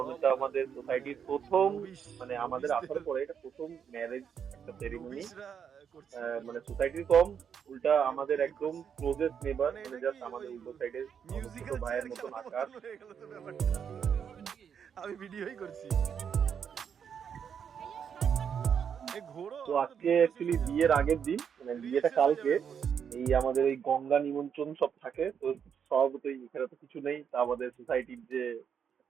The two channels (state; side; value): quieter; left; 7.6 dB